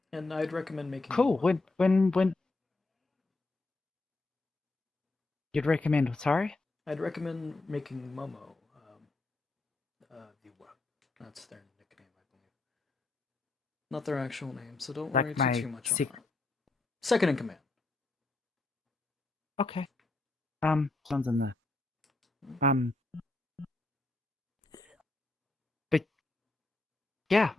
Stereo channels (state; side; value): quieter; right; 3.2 dB